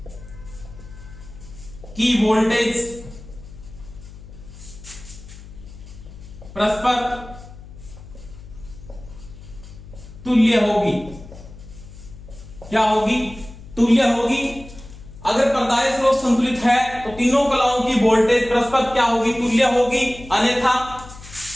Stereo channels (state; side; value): noise; left; hum, 17 dB below the sound